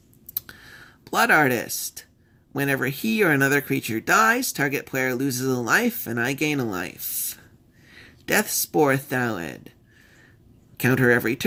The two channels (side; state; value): both; identical; correlation 1.00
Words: Blood Artist. Whenever he or another creature dies, target player loses a life, and I gain a life. Deathspore Thalid. Counter every